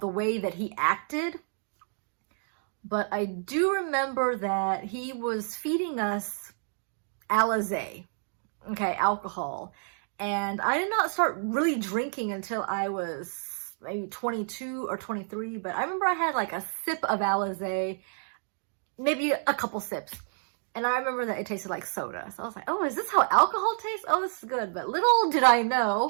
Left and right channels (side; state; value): left; silent; 58 dB below the other